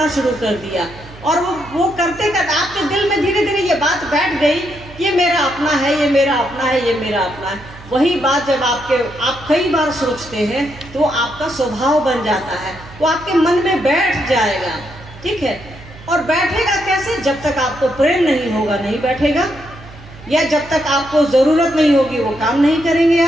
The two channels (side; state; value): right; noise; hum, 19 dB below the sound